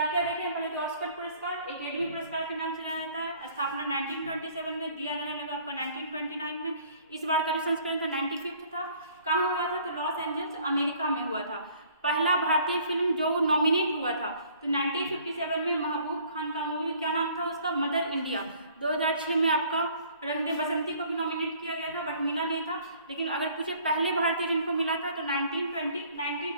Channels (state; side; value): inverted; both; correlation -0.56